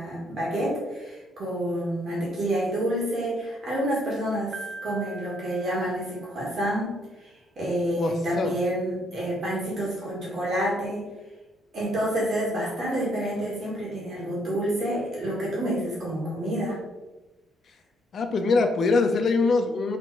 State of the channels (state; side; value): normal; both; correlation 0.70